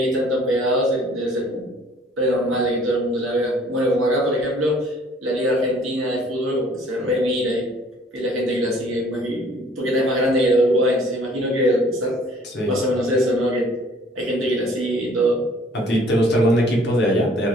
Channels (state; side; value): normal; both; correlation 0.56